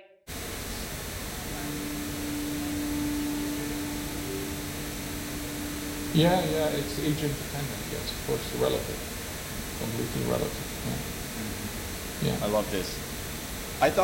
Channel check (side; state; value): both; identical; correlation 1.00